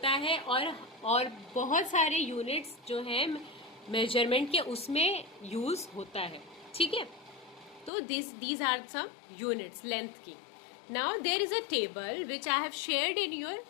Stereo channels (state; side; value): drops out; right; at 7.9 s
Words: है, और बहुत सारे यूनिट्स जो हैं मेजरमेंट के उसमें यूज होता है। ठीक है, तो these are some units length की. Now there is a table which I have shared